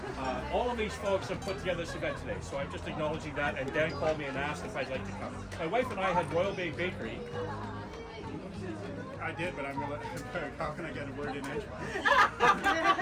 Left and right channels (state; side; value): identical; both; correlation 1.00